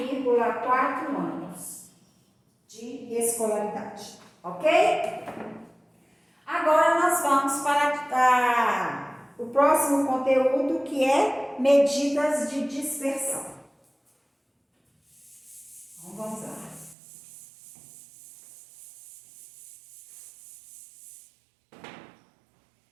anos de escolaridade, ok? Agora nós vamos para o próximo conteúdo, que é medidas de dispersão. Então, vamos lá.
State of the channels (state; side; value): drops out; left; at 16.9 s